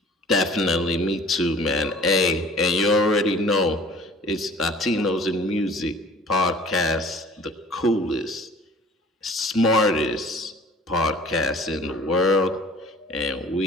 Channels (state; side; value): normal; both; correlation 0.49